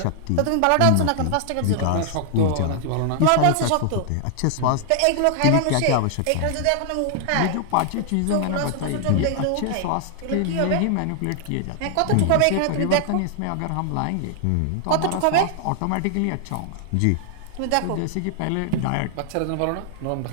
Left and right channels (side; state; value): both; different; correlation 0.00